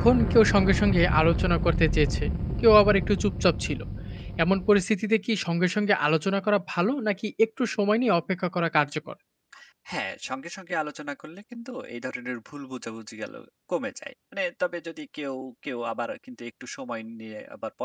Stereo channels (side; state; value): both; identical; correlation 1.00